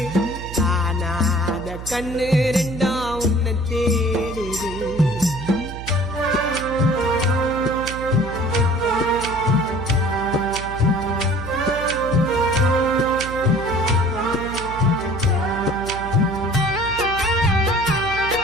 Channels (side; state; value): right; noise; hum, 10 dB below the sound